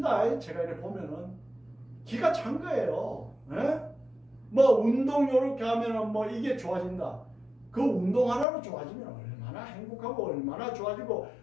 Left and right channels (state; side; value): drops out; right; at 8.5 s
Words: 제가 이렇게 보면은 기가 찬 거예요. 에? 뭐 운동 요렇게 하면은 뭐 이게 좋아진다. 그 운동 하나로 좋아지면 얼마나 행복하고 얼마나 좋아지고